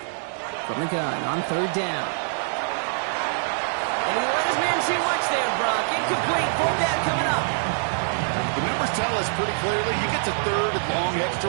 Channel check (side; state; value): left; silent; digital silence